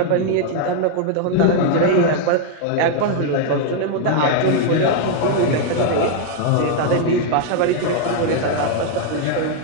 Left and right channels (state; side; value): different; both; correlation 0.00